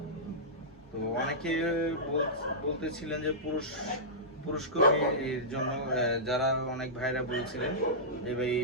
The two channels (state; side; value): normal; both; correlation -0.16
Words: তো অনেকে বলতেছিলেন যে পুরুষ কর্মীর জন্য, যারা অনেক ভাইরা বলছিলেন যে ভাই